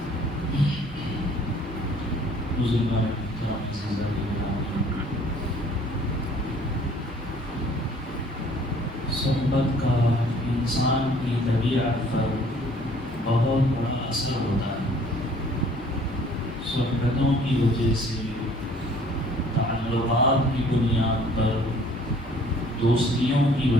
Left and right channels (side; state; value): both; normal; correlation 0.56